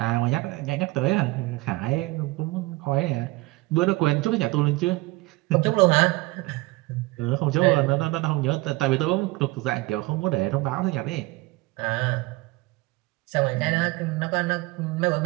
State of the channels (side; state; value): left; quieter; 21.6 dB